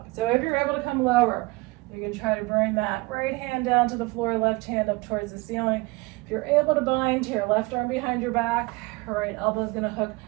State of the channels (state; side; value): quieter; left; 24.2 dB